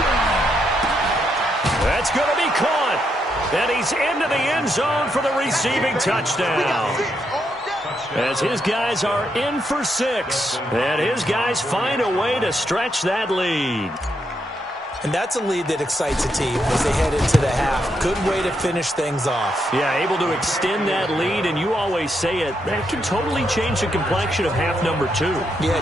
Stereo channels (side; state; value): both; normal; correlation 0.80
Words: That's going to be caught. And he's into the end zone for the receiving touchdown. As his guys are in for 6. And his guys find a way to stretch that lead. And that's a lead that excites a team as they head into the half. Good way to finish things off. Yeah, able to extend that lead, and you always say it, that can totally change the complexion of half number 2. Yeah,